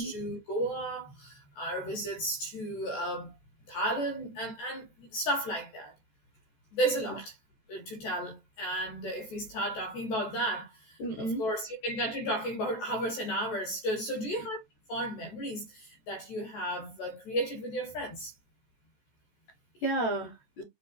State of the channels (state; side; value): late; right; 14 ms